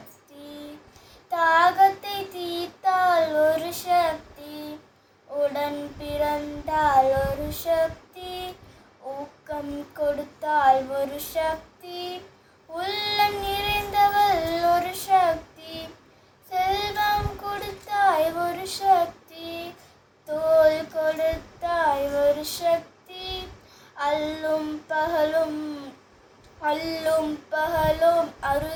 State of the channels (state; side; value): identical; both; correlation 1.00